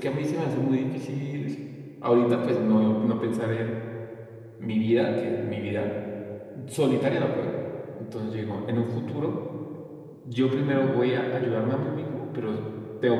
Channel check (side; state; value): both; identical; correlation 1.00